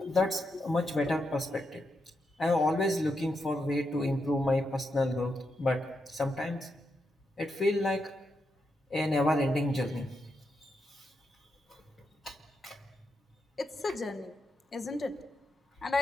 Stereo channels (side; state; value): both; normal; correlation 0.84